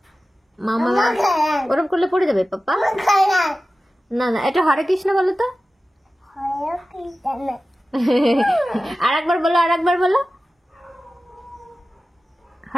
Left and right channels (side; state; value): both; normal; correlation 0.95